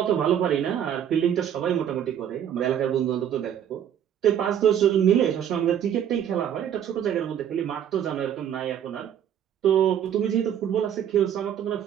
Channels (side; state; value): left; quieter; 9.6 dB